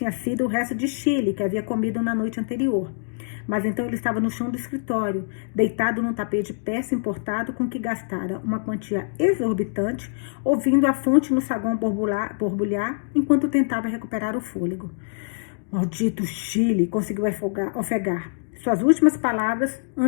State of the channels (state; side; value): silent; right; digital silence